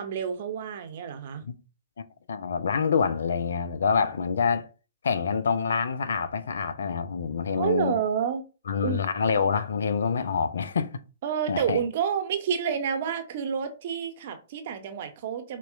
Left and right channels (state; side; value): inverted; both; correlation -0.61